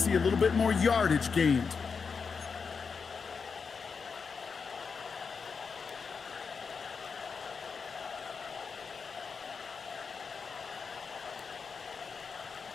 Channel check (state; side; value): quieter; right; 5.4 dB